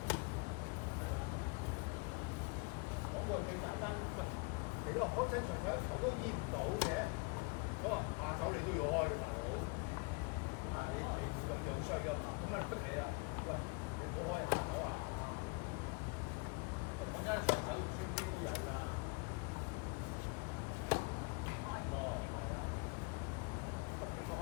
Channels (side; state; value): right; quieter; 31.1 dB